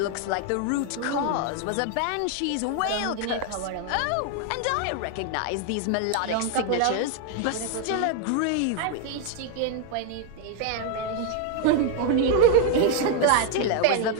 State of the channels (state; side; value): different; both; correlation 0.01